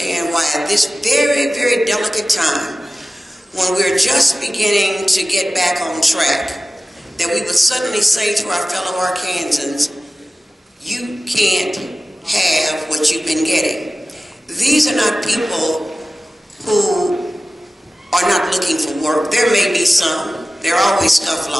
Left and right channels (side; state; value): both; normal; correlation 0.96